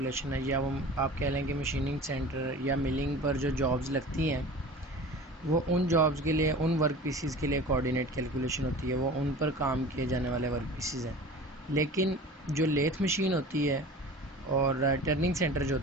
है, या वो आप कह लें कि मशीनिंग सेंटर या मिलिंग पर जो जॉब्स लगती हैं वो उन जॉब्स के लिए, उन वर्क पीसीज के लिए कोऑर्डिनेट कैलकुलेशन होती है, वो उन पर काम किए जाने वाले वर्क पीसीज हैं। लेकिन जो लेथ मशीन होती है और टर्निंग सेंटर जो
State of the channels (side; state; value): both; normal; correlation 0.39